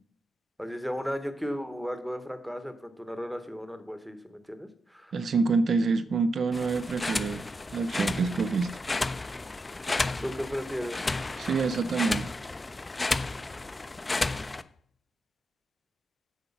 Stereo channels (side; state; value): both; normal; correlation 0.86